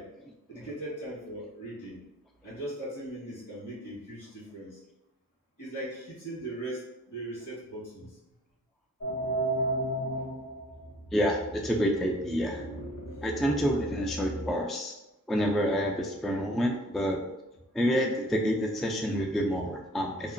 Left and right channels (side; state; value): both; normal; correlation 0.56